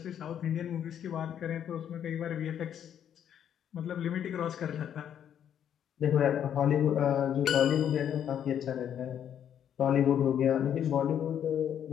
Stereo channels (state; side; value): quieter; right; 9.4 dB